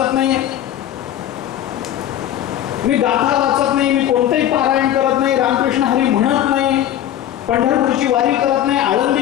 नाही, मी गाथा वाचत नाही, मी कोणतेही पारायण करत नाही, रामकृष्ण हरी म्हणत नाही, पंढरपूरची वारी करत नाही,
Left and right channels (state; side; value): quieter; right; 11.6 dB